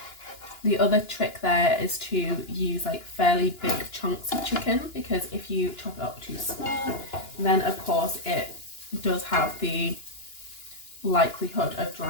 The other trick there is to use like fairly big chunks of chicken, because if you chop it up too small, then of course it does have the likelihood of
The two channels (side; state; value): right; late; 2.9 ms